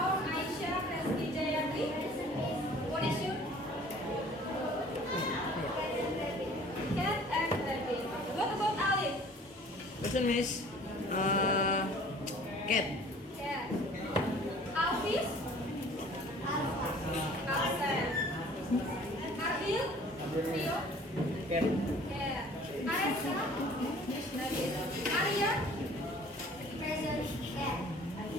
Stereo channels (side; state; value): both; normal; correlation 0.50